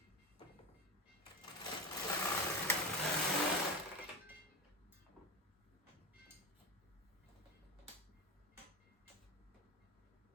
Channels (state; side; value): normal; both; correlation 0.24